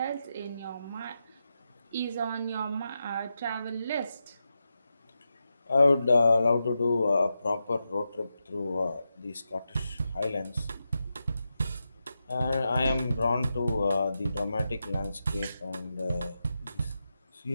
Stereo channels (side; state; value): both; inverted; correlation -0.88